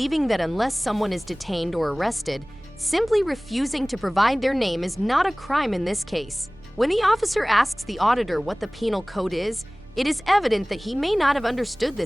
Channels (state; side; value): noise; right; rumble, 24 dB below the sound